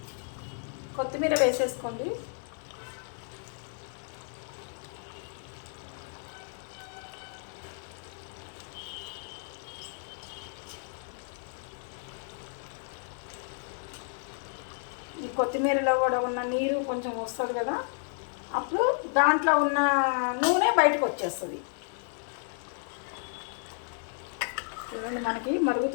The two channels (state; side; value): silent; right; 57 dB below the other